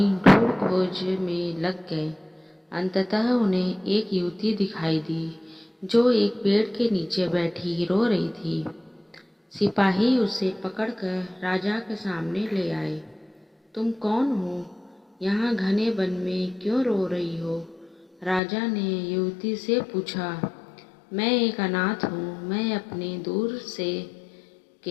ढूंढ खोज में लग गए। अंततः उन्हें एक युवती दिखाई दी जो एक पेड़ के नीचे बैठी रो रही थी। सिपाही उसे पकड़कर राजा के सामने ले आए। तुम कौन हो? यहाँ घने वन में क्यों रो रही हो? राजा ने युवती से पूछा। मैं एक अनाथ हूँ। मैं अपने दूर से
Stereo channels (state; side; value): drops out; right; at 18.4 s